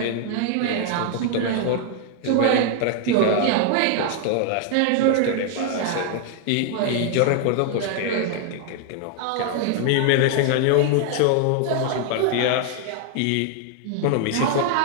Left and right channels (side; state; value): both; different; correlation 0.00